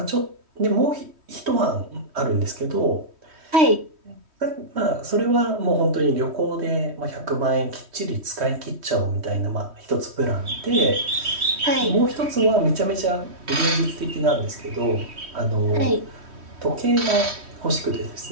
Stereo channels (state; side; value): late; left; 3.1 ms